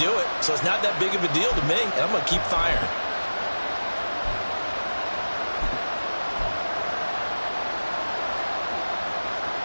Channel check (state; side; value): inverted; both; correlation -1.00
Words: do it, so it's not that big of a deal to me, and I'm going to keep firing.